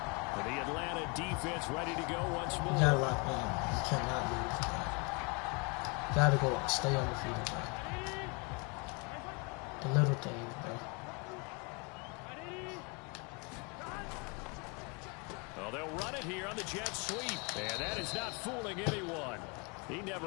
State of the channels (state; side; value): quieter; right; 31.7 dB